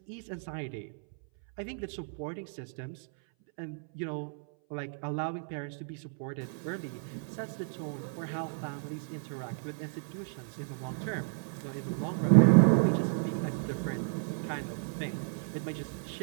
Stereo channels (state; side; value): silent; left; 56 dB below the other